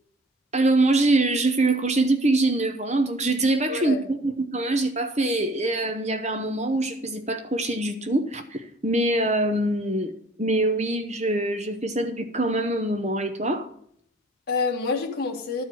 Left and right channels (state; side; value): normal; both; correlation 0.52